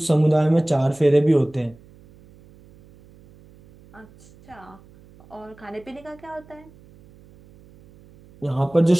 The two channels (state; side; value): noise; right; hum, 25 dB below the sound